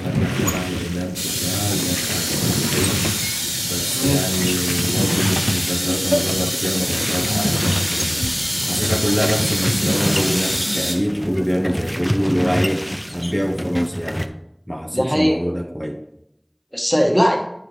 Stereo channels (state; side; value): identical; both; correlation 1.00